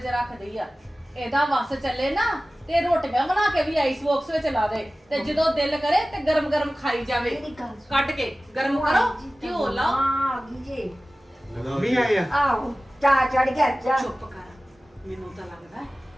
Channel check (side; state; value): both; normal; correlation 0.97